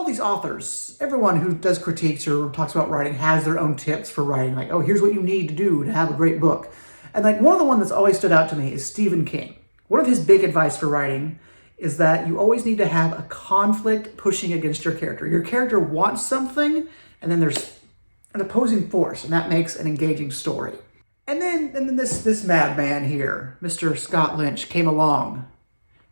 these authors, everyone who does critiques or talks about writing has their own tips for writing, like, oh, here's what you need to do to have a great book. And, like, one of the ones that's always stood out to me is Stephen King. One of his big advice for writing is that you always need to have a conflict pushing against your character. Your character wants something, and then there's an opposing force, and that makes an engaging story. And then this madman here, Mr. Scott Lynch, came along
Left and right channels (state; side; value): inverted; both; correlation -1.00